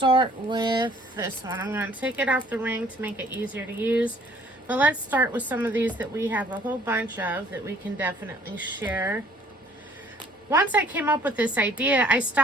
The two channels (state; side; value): normal; both; correlation 0.57